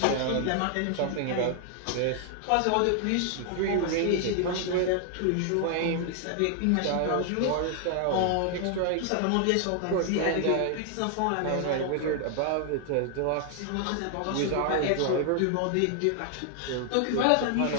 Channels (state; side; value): different; both; correlation 0.00